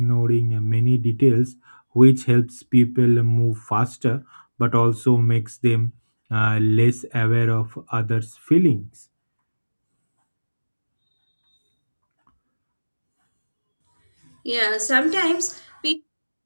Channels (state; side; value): inverted; both; correlation -1.00